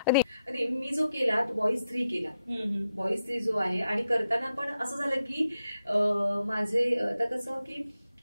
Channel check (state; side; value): inverted; both; correlation -0.87